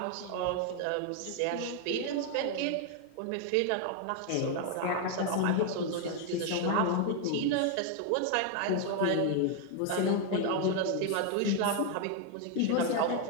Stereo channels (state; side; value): different; both; correlation 0.00